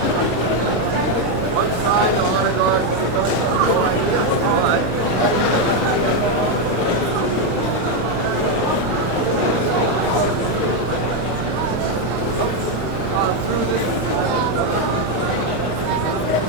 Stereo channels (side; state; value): both; normal; correlation 0.04